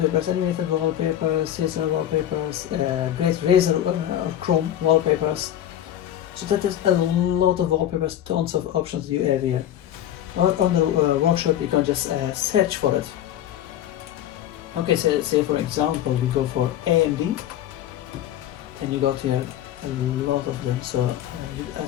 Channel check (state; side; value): quieter; right; 11.5 dB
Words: animated wallpapers, scissor wallpapers, great razor or chrome wallpapers. So that is a lot of wallpapers, tons of options you have here. Or on the workshop you can just search for it. Okay, so say for example we go for AMD, and you got here a lot of them. So